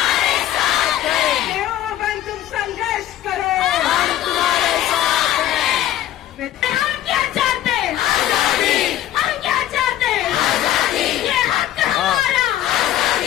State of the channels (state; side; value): quieter; right; 12.6 dB